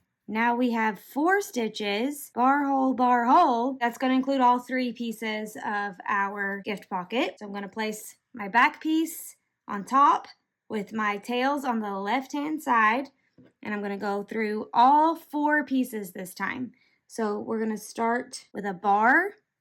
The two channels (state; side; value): identical; both; correlation 1.00